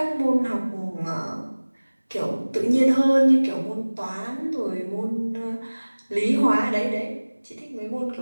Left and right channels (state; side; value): inverted; both; correlation -1.00